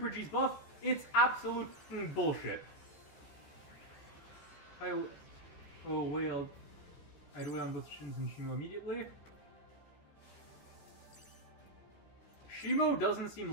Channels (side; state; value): right; late; 14 ms